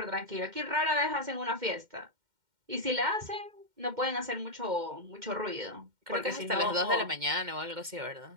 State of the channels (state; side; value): late; left; 2.1 ms